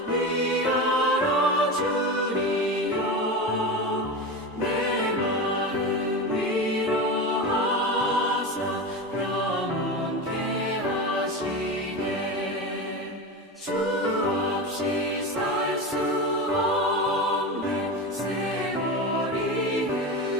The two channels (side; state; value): both; normal; correlation 0.23